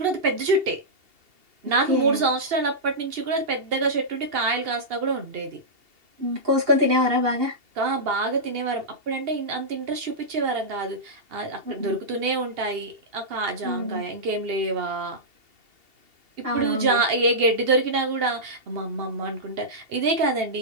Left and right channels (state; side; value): late; left; 2.8 ms